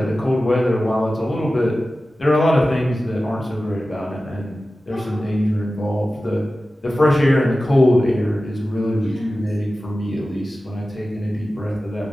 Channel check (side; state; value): both; normal; correlation 0.95